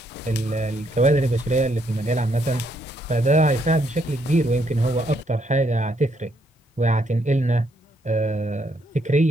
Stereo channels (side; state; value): both; normal; correlation 0.73